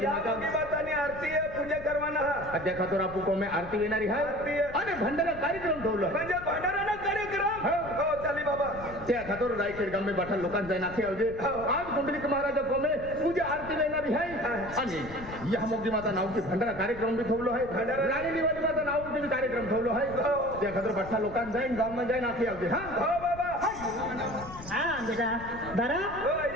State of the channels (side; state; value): left; noise; rumble, 14 dB below the sound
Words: माता बातानी आरती आहे पूजा करवाना हा अध्या खातोर आपू कोमे आरती येणारी आहे आणि भंडारा कार्यक्रम ठेवलं म्हणजे भांडाराना कार्यक्रम हो चाली बाबा त्या खातोर रायखेड गामे बाठा लोकांचा नाखे आवजे आज कुंडलिक महाराज कोमे पूजा आरती येणारी आहे आणि या मोठी माता नावची भंडारा कार्यक्रम बी ठेवलो आहे राणी दिवाळी माता नावची कार्यक्रम ठेवलो आहे त्या खातोर बाठा लोकांचा जाईन गावમાં जाईन नाखे आवजे हा हो बाबा हा बेटा दरा हो